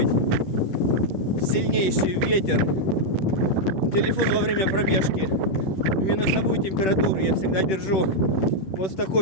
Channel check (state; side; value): late; right; 10 ms